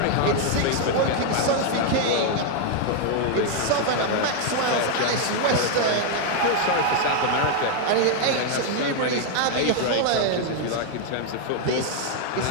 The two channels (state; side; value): different; both; correlation 0.01